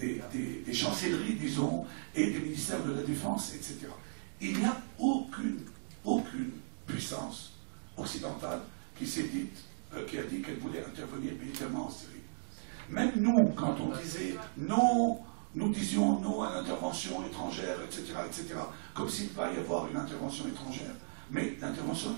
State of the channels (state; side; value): silent; left; digital silence